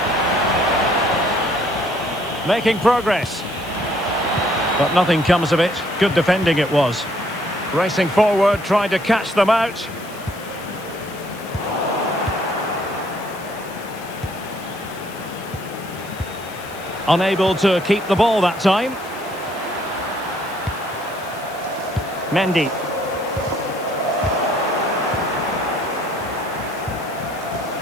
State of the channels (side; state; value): left; noise; hiss, 18 dB below the sound